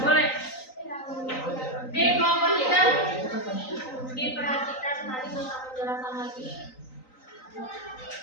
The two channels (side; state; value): right; late; 3.9 ms